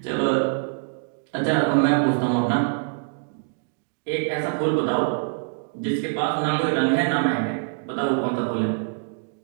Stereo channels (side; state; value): left; silent; digital silence